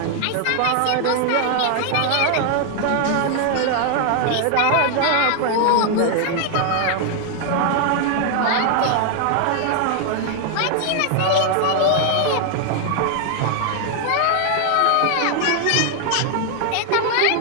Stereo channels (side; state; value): both; different; correlation 0.00